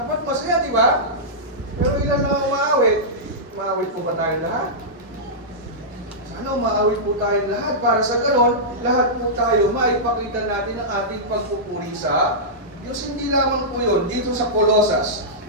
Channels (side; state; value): both; normal; correlation -0.13